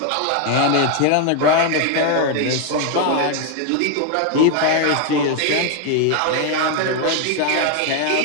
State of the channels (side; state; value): both; different; correlation 0.01